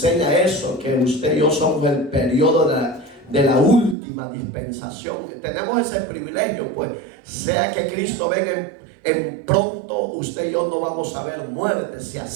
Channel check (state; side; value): drops out; left; at 4.0 s